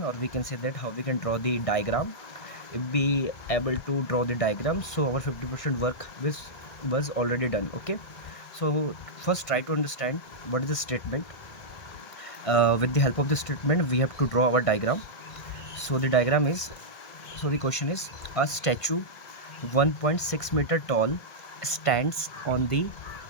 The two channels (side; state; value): right; late; 1.7 ms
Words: or we can say that how we can draw the diagram. If be able to draw the diagram, so our 50% work was already done. Okay, so first try to understand what is the statement. With the help of the statement we have to draw our diagram. So the diagram is, so the question is, a statue 1.6 meter tall stands on the